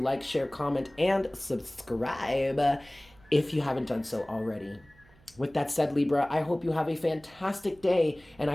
share, comment, and subscribe if you haven't done so already. With that said, Libra, I hope you have a fantastic day, and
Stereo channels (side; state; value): right; noise; hum, 28 dB below the sound